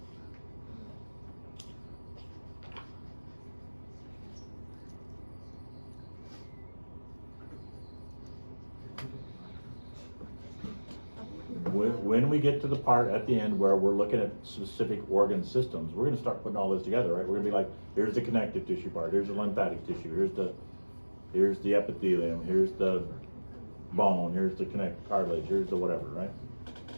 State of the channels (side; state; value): both; inverted; correlation -1.00